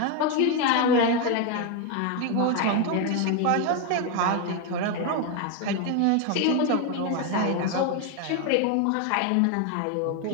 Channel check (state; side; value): different; both; correlation 0.01